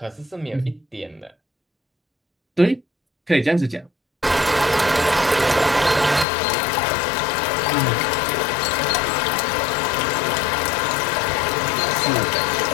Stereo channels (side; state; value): right; drops out; at 6.2 s